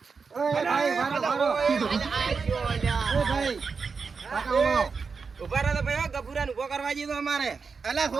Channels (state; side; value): quieter; left; 5.1 dB